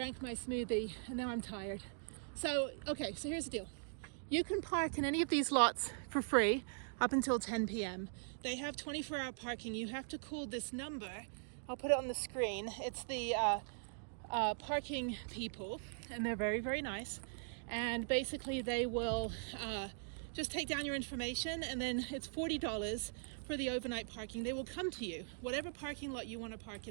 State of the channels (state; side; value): silent; left; digital silence